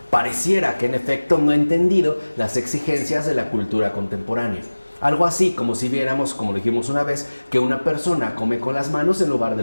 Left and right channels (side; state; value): both; inverted; correlation -1.00